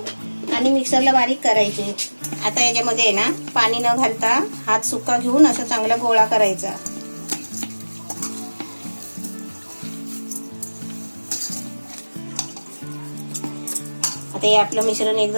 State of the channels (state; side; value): inverted; both; correlation -1.00